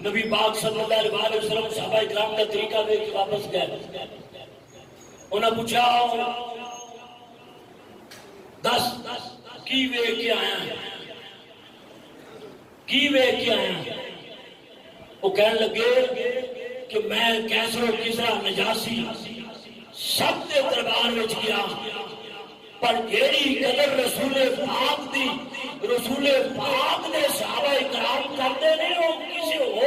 نبی پاک صلی اللہ علیہ وسلم صحابہ اکرام کا طریقہ دے کے واپس گئے انہوں نے پوچھا 10 کی وے کے آیا وہ کہنے لگے کہ میں کیسر و کسرا نجاسی سب کے دربار میں گیا پر جیڑی قدر رسول پاک نے صحابہ اکرام کرتے نہیں وہ کسی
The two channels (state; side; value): identical; both; correlation 1.00